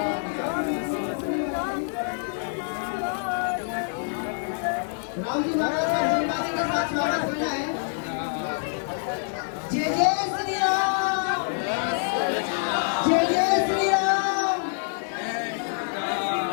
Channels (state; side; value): silent; right; digital silence